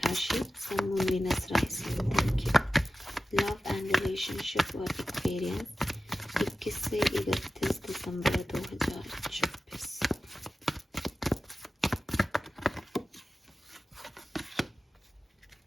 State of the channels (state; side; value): normal; both; correlation 0.94